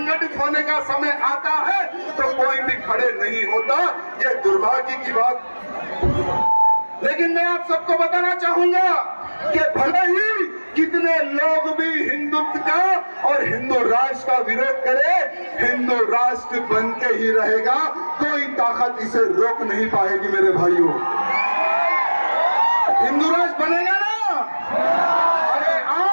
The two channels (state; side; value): inverted; both; correlation -1.00